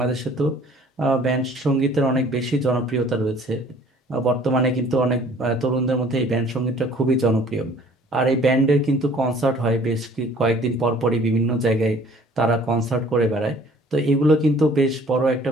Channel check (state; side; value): normal; both; correlation 0.54